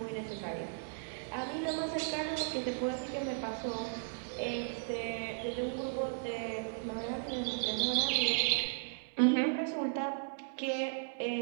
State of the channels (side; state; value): left; silent; digital silence